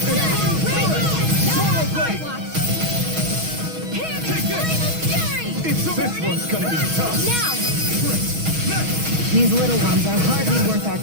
Take this! It's over. This one's gonna be tough. Now! These little ones are hardly worth our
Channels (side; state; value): left; late; 6.3 ms